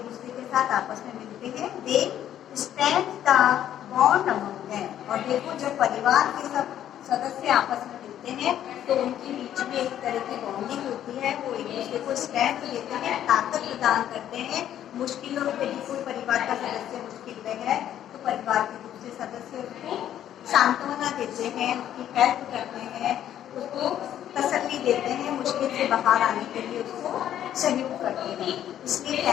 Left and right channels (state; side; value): quieter; right; 11.0 dB